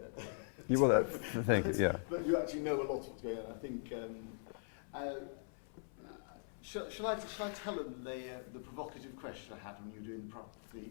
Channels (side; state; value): right; silent; 50 dB below the other